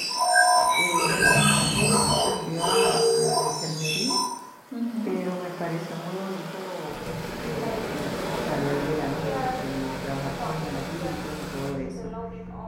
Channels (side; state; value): both; identical; correlation 1.00